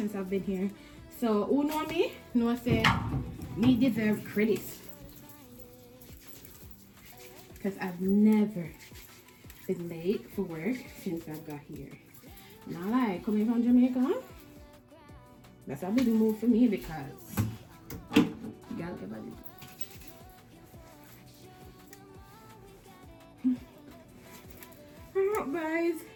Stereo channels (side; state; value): both; identical; correlation 1.00